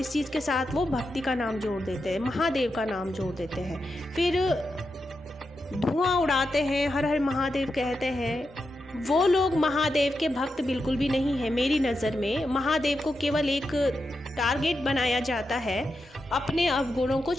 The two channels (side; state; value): both; normal; correlation 0.87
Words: चीज़ के साथ वो भक्ति का नाम जोड़ देते हैं, महादेव का नाम जोड़ देते हैं, फिर धुआं उड़ाते हैं, हर हर महादेव कहते हैं। वो लोग महादेव के भक्त बिल्कुल भी नहीं है। मेरी नज़र में महादेव को केवल एक टारगेट बनाया जाता है अपने अवगुणों को